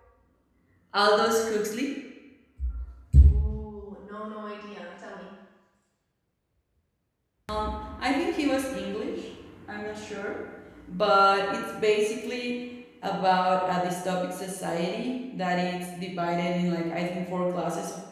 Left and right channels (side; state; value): both; identical; correlation 1.00